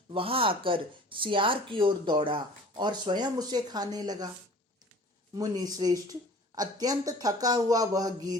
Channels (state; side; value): normal; both; correlation 0.46